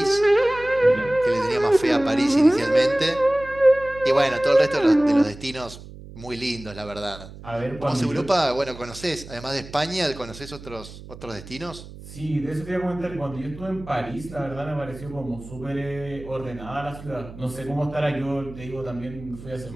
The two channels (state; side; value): noise; right; hum, 16 dB below the sound